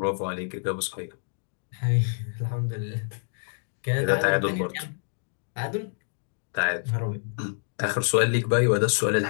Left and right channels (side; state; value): right; silent; digital silence